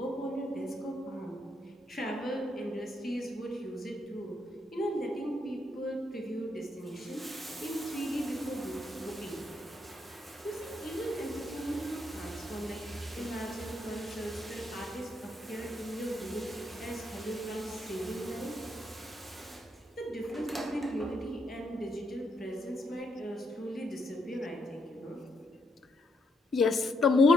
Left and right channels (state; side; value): normal; both; correlation 0.77